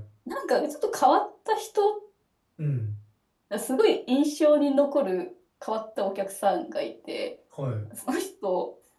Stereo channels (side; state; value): both; identical; correlation 1.00